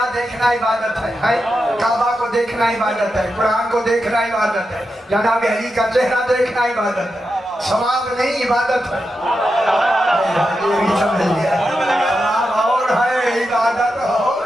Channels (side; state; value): both; normal; correlation 0.88